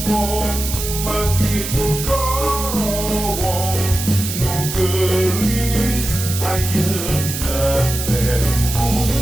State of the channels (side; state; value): right; noise; hiss, 6 dB below the sound